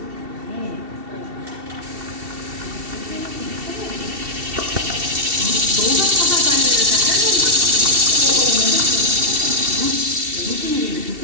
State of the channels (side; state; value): left; late; 2.7 ms